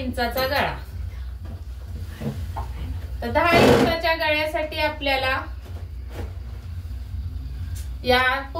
गळा. तर 10 इंचाच्या गळ्यासाठी आपल्याला या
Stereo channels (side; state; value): both; identical; correlation 1.00